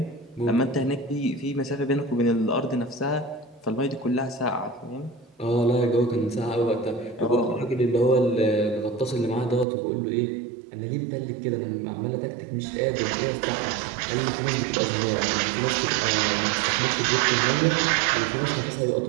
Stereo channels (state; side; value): drops out; left; at 9.7 s